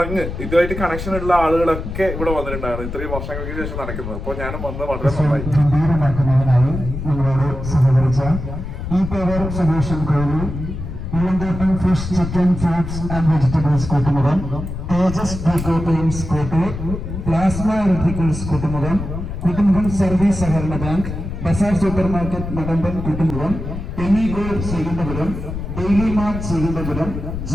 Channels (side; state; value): left; noise; rumble, 7 dB below the sound